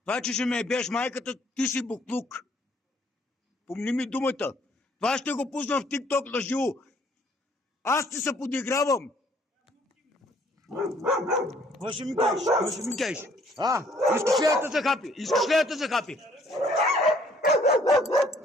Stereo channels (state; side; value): normal; both; correlation 0.62